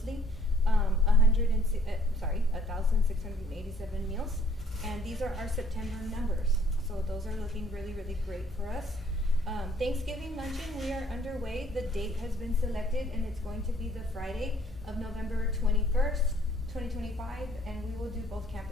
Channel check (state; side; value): normal; both; correlation 0.60